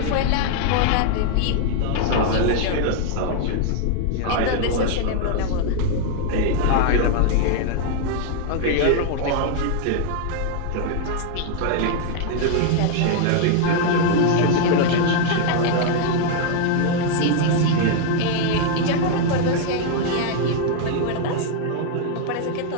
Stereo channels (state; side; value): different; both; correlation 0.00